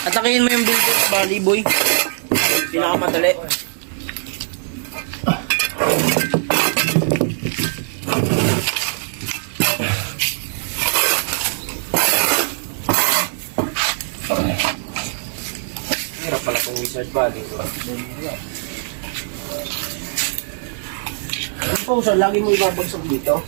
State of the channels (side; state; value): left; silent; digital silence